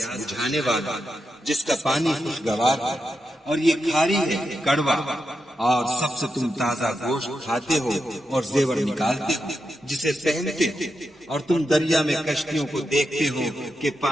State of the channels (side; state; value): both; normal; correlation 0.87